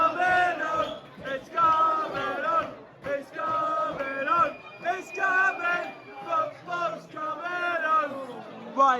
on. It's coming on. It's coming on. It's coming. Football's coming on.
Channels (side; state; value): both; identical; correlation 1.00